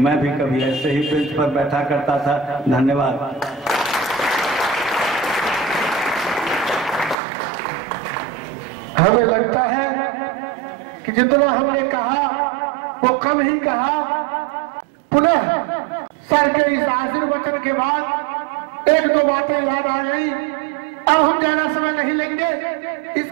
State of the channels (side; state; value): left; drops out; at 7.2 s